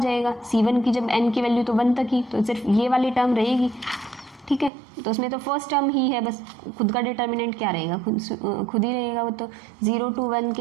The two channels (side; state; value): left; drops out; at 4.7 s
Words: C1 की जब n की वैल्यू तो 1 तक ही, तो सिर्फ ये वाली टर्म रहेगी, ठीक है। तो उसमें तो फर्स्ट टर्म ही है बस, खुद का डिटर्मिनेंट क्या रहेगा, खुद ही रहेगा वो, तो 0 to 1